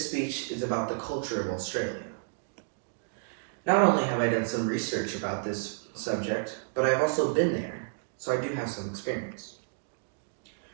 speech is about the culture of Australia. Not only have I done some research about this subject, but I've also been there, so I do have some experience.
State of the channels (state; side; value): silent; left; digital silence